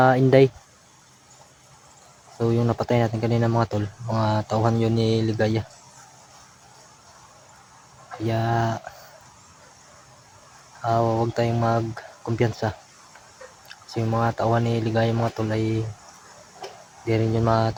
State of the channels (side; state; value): both; identical; correlation 1.00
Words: Inday. So yung napatay natin kanina mga tol, mga tauhan yun ni Ligaya. Kaya huwag tayong magkumpiyansa. Kasi yung mga tauhan ni Ligaya mga tol ay di rin yun